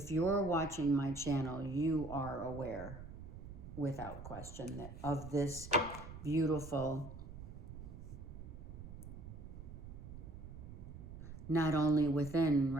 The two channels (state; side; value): noise; right; rumble, 11 dB below the sound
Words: you're watching my channel, you are aware. without question, that of this beautiful, not only within,